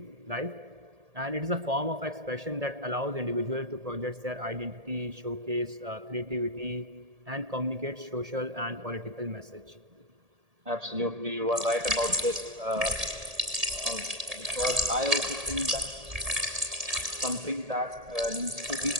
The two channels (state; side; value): late; left; 1.8 ms